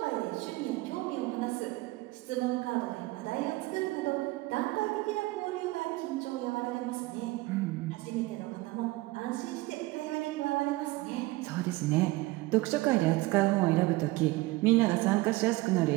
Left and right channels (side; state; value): left; quieter; 20.1 dB